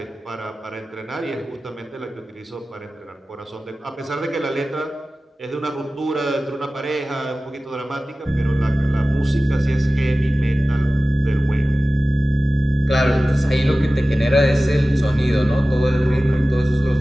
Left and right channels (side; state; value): both; normal; correlation 0.96